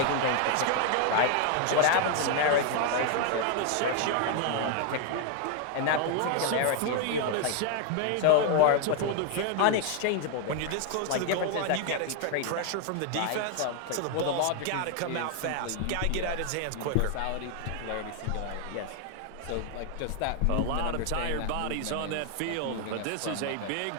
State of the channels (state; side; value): different; both; correlation 0.00